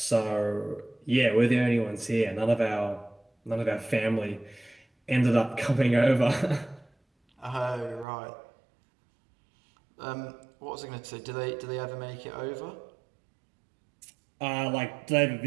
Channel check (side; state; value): left; drops out; at 8.1 s